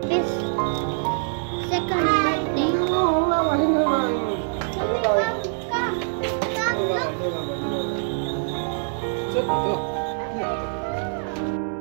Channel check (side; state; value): left; silent; 62 dB below the other